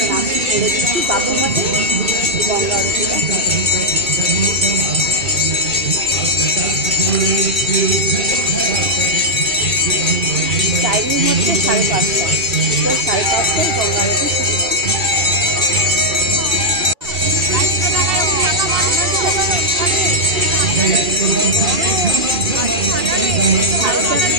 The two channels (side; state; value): left; late; 2.6 ms